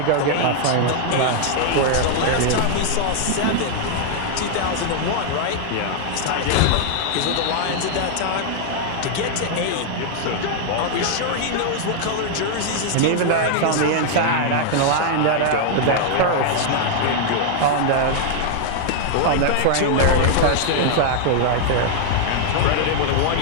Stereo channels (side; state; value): both; different; correlation 0.00